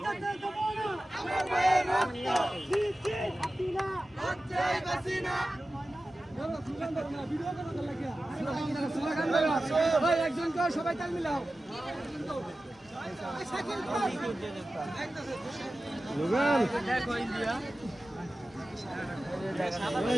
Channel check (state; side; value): normal; both; correlation 0.95